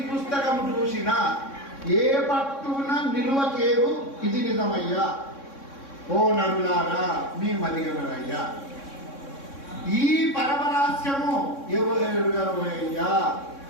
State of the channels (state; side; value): late; right; 3.6 ms